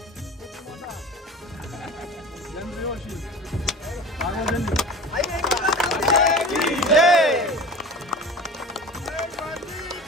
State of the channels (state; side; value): normal; both; correlation 0.37